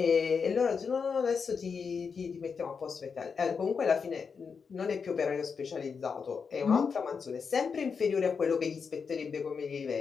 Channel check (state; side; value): quieter; right; 5.8 dB